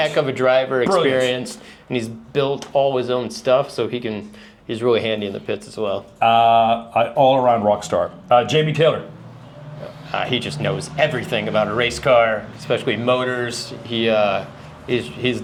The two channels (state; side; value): identical; both; correlation 1.00